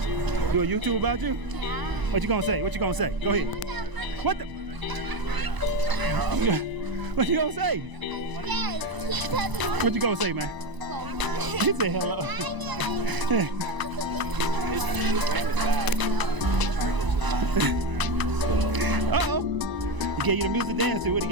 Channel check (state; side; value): late; left; 1.0 ms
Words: Do a YouTube about you? Yeah. What you gonna say? What you gonna say? Go ahead. What the? What you gonna say? What you gonna say, man? He said hello. Uh-oh. He gave you the music dance to. What he